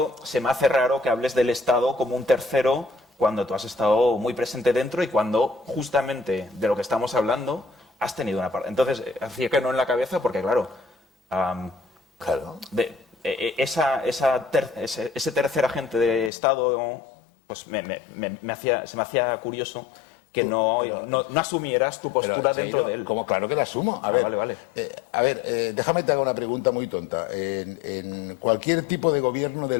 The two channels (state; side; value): drops out; right; at 16.3 s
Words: se me hace raro que hables del Estado como un tercero cuando tú has estado muy presente dentro y cuando justamente de lo que estamos hablando has tenido una parte. Entonces, hacía que no en la cabeza porque, claro, ese tercer agente de Estado pues se me hacía curioso que no asumieras tu postura dentro de él. Como claro que la asumo. A ver, vale. Déjame te haga una pregunta muy tonta. En cualquier tipo de gobierno